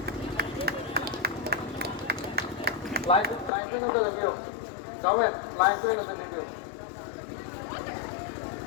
Line swing of the review. Comment, line swing of the review.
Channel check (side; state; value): right; drops out; at 3.5 s